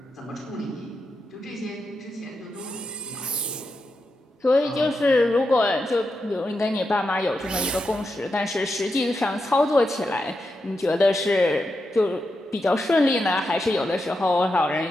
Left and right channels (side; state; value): both; normal; correlation 0.87